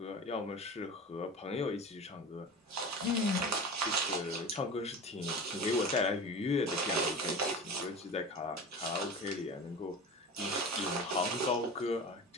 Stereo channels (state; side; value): normal; both; correlation 0.33